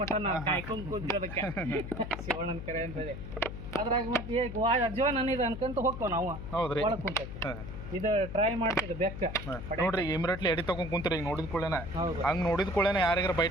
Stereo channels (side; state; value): left; noise; hum, 9 dB below the sound